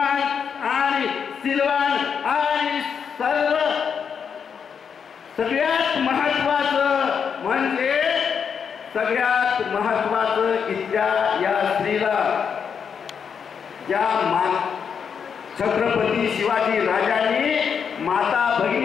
आणि सिलवान आणि सगळ्यात महत्वाचं म्हणजे सगळ्यात महत्वाचं इथल्या या स्त्रीला ज्या छत्रपती शिवाजी राजांनी माता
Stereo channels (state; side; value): quieter; right; 6.9 dB